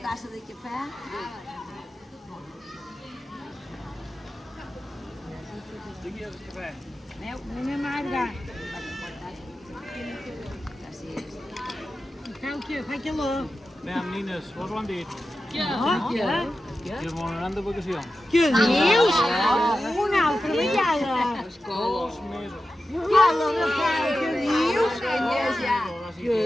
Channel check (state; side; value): normal; both; correlation 0.92